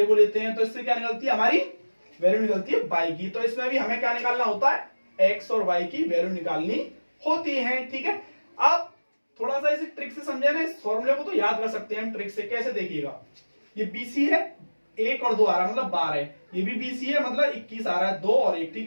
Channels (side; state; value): both; inverted; correlation -1.00